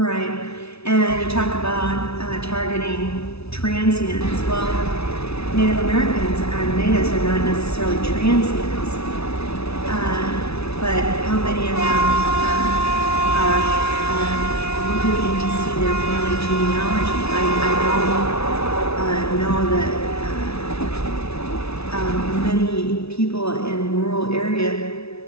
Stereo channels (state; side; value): late; right; 0.79 ms